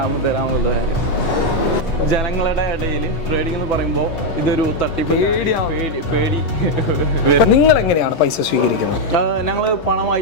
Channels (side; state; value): right; late; 8.1 ms